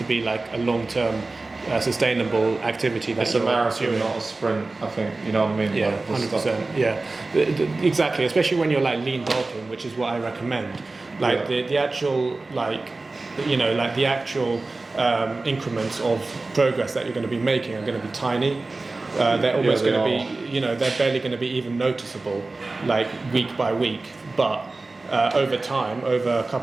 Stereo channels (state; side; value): quieter; left; 3.4 dB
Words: be like a long-term sustainable activity. It's a marathon, not a sprint, I think, you know what I mean? Yeah, 100%. Yeah, exactly, especially when you're like lean bulking, which is what I recommend. Like the actual, like, you know, like the actual increments of progress that you're going to be making are going to be tiny. They're almost going to be, you know, they're barely going to be even noticeable, like week by week. But over time, over a